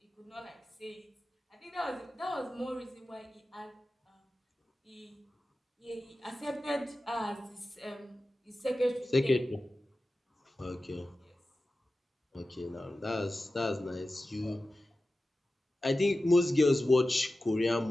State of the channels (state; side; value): normal; both; correlation 0.94